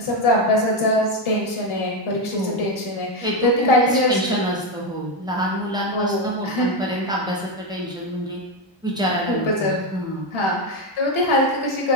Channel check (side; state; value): both; normal; correlation 0.10